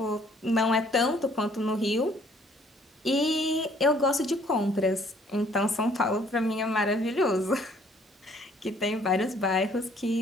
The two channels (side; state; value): both; normal; correlation 0.61